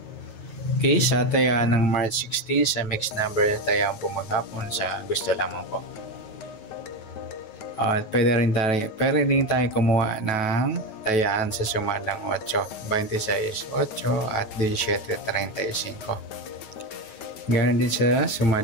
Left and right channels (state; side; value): late; right; 9.2 ms